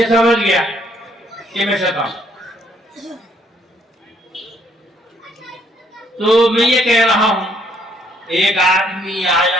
سمجھ گیا کہ میں شیطان۔ تو میں یہ کہہ رہا ہوں، ایک آدمی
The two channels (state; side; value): normal; both; correlation 0.68